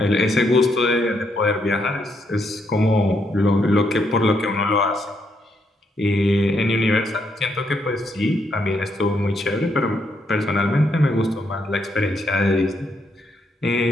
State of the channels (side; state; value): both; normal; correlation 0.76